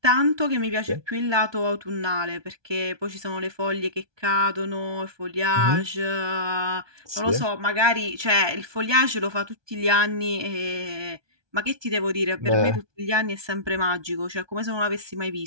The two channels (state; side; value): late; left; 1.2 ms